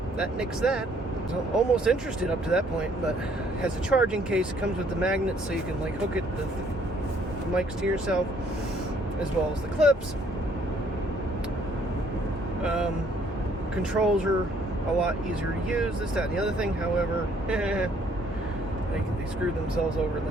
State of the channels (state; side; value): normal; both; correlation 0.64